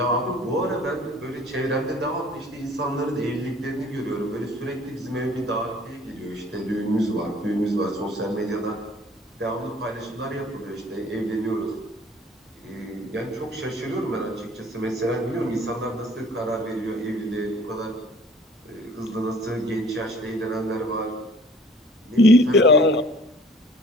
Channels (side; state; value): both; normal; correlation 0.52